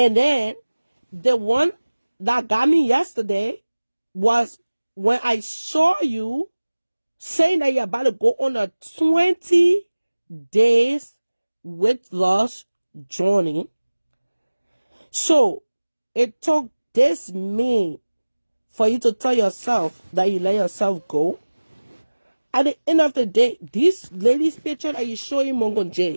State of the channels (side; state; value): both; inverted; correlation -1.00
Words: then the one that got me yesterday was when I saw you saying that you're about to go on a 20 days weight loss journey. So it took this man for you to tell yourself that you let yourself go. At the end of the day, this lady's picture that you show in Mongo